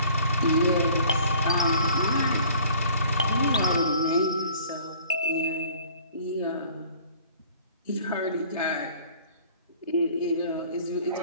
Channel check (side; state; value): both; inverted; correlation -0.51